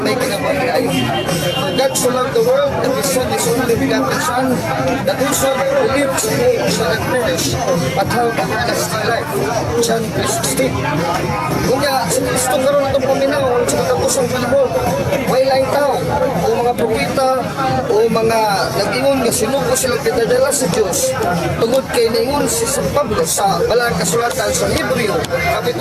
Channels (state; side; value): identical; both; correlation 1.00